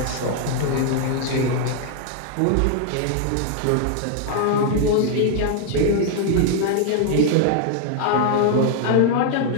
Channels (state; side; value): different; both; correlation 0.00